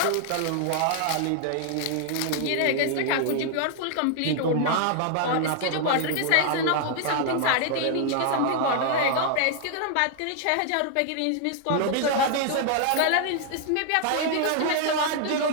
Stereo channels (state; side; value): different; both; correlation 0.00